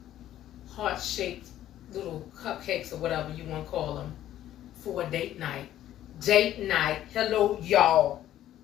heart-shaped little cupcakes or whatever you want to call them for a date night. Date night. Hello, y'all.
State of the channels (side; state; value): right; quieter; 12.5 dB